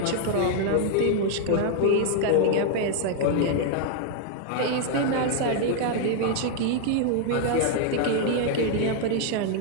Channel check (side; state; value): both; different; correlation 0.00